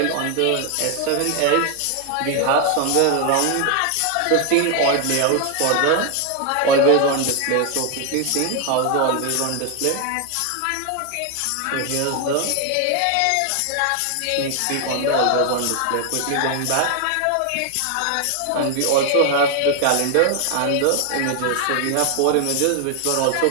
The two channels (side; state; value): both; different; correlation 0.00